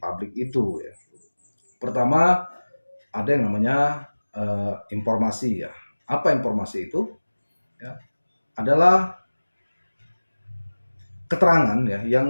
itu ya. Pertama ada yang namanya informasi ya. Apa informasi itu? Ya, adalah keterangan ya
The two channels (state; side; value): inverted; both; correlation -1.00